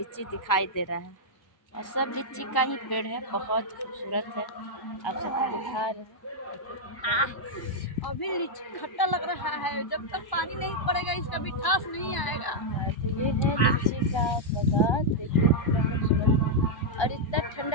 दिखाई दे रहा है और सब लीची का ही पेड़ है, बहुत खूबसूरत है। आप सबको दिखा रहे हैं। अभी लीची खट्टा लग रहा है, जब तक पानी नहीं पड़ेगा इसका मिठास नहीं आएगा। तो ये है लीची का बागान, देखिए कितना खूबसूरत है और इतना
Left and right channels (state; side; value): late; right; 1.0 ms